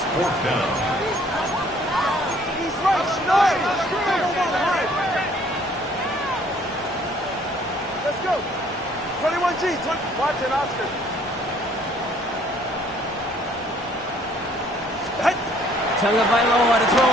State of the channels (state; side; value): normal; both; correlation 0.60